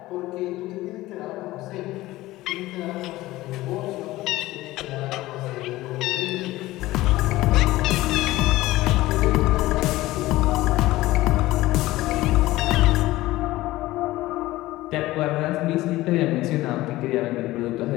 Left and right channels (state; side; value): quieter; right; 17.6 dB